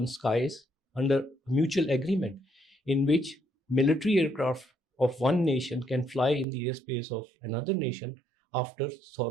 skies under mutual agreement in which military aircraft of one nation can fly in the airspace of another nation after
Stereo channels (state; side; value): drops out; left; at 6.5 s